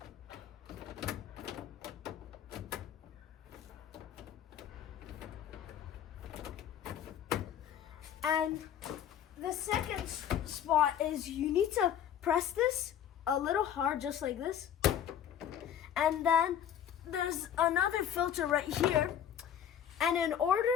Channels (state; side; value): quieter; right; 9.6 dB